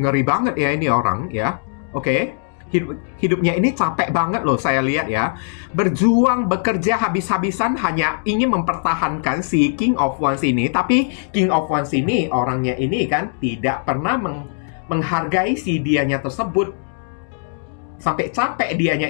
banget ya ini orang ya. Oke. Hidupnya ini capek banget loh saya lihat ya. Berjuang, bekerja habis-habisan hanya ingin mempertahankan si King of Wands ini. Tapi King of Wands ini, orangnya ini kan tidak pernah menghargai si dianya tersebut. Sampai capek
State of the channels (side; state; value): right; silent; digital silence